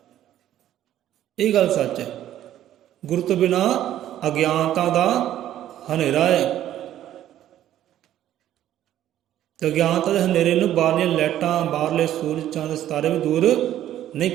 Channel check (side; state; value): left; quieter; 12.2 dB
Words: ਇਹ ਗੱਲ ਸੱਚ ਹੈ। ਗੁਰੂ ਤੋਂ ਬਿਨਾਂ ਅਗਿਆਨਤਾ ਦਾ ਹਨੇਰਾ ਹੈ। ਤੇ ਅਗਿਆਨਤਾ ਦੇ ਹਨੇਰੇ ਨੂੰ ਬਾਹਰਲੀਆਂ ਲਾਈਟਾਂ, ਬਾਹਰਲੇ ਸੂਰਜ ਚੰਦ ਸਿਤਾਰੇ ਵੀ ਦੂਰ ਨਹੀਂ